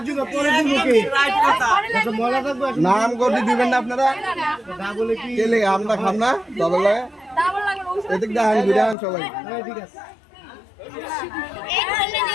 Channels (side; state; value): right; drops out; at 9.0 s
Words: দিব পরে দিব কি রাইট কথা আচ্ছা মজা থাকবে নাম করে দিবেন না আপনারা না বলে কি কেলে আমরা খাম না ডাবল লাগে ডাবল লাগে এদিক দাঁড়ান বিরান সবাই ঠিক আছে